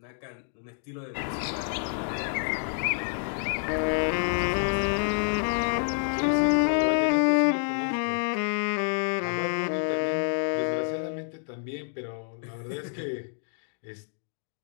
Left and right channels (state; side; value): silent; right; digital silence